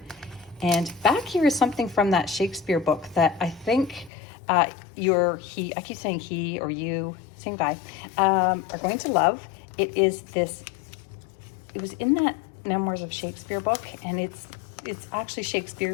And back here is something from that Shakespeare book that I think I keep saying he or you, same guy, are going to love. It is this. It was in that Memoirs of Shakespeare book, and it's actually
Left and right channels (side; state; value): right; drops out; at 4.1 s